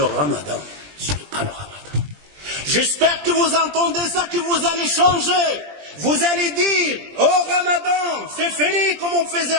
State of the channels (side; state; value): left; late; 20 ms